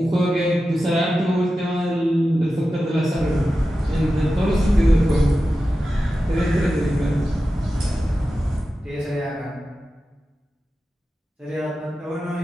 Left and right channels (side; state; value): both; normal; correlation 0.93